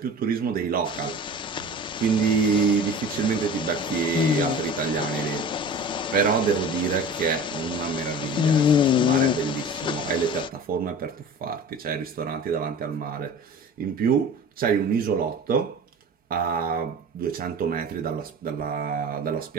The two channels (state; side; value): normal; both; correlation 0.38